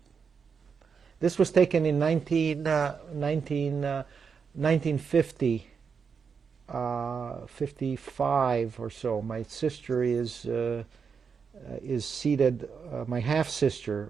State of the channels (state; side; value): quieter; left; 6.0 dB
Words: This was taken in 1950, 55 or so. My sister is seated. My half sister